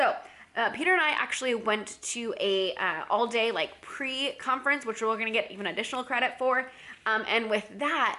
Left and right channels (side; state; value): both; identical; correlation 1.00